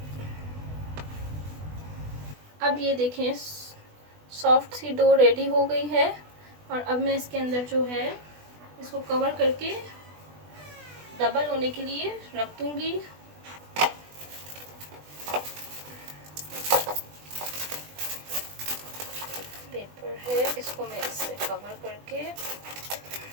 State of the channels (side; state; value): left; late; 20 ms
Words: अब ये देखें, सॉफ्ट सी डो रेडी हो गई है। और अब मैं इसके अंदर जो है इसको कवर करके डबल होने के लिए रख दूंगी। पेपर है, इसको मैं इससे कवर करके